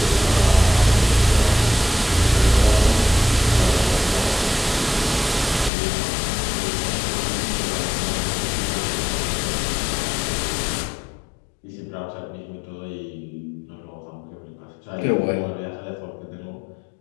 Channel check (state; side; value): drops out; right; at 5.7 s